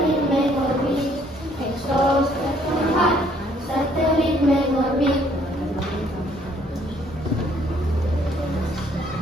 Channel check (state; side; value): normal; both; correlation 0.64